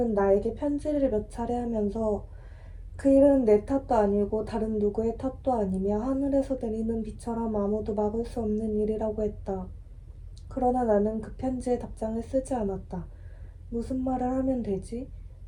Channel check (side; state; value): both; identical; correlation 1.00